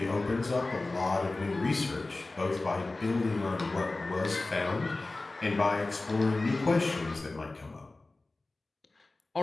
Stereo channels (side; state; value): right; quieter; 3.2 dB